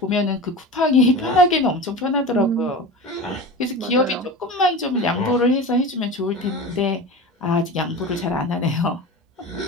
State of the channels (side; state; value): both; normal; correlation 0.31